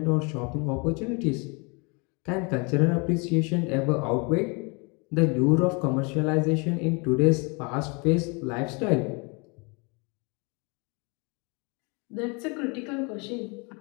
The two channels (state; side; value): quieter; right; 31.2 dB